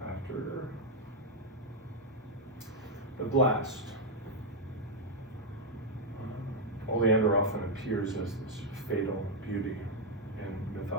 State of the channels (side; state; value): both; normal; correlation 0.01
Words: after the blast. Oleander often appears as this fatal beauty in